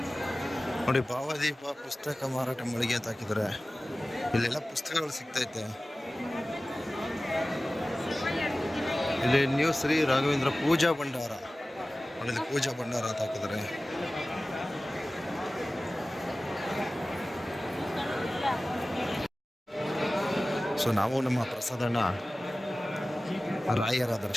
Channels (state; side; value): normal; both; correlation 0.97